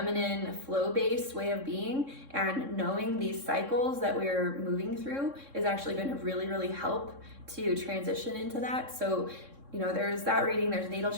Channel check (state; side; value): late; left; 3.6 ms